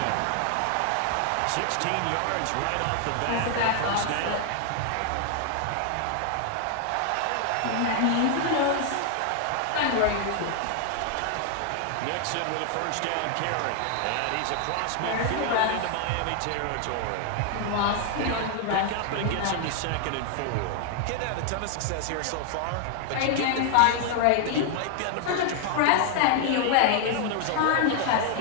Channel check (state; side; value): different; both; correlation 0.00